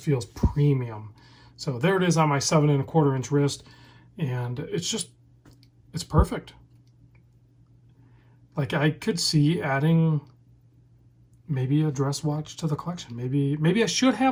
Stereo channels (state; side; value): identical; both; correlation 1.00